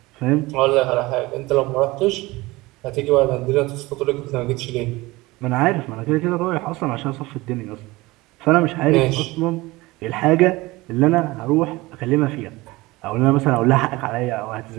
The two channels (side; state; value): left; quieter; 20.9 dB